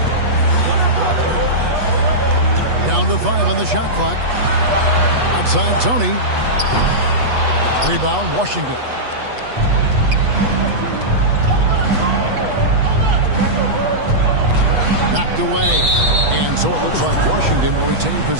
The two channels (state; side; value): late; left; 8.2 ms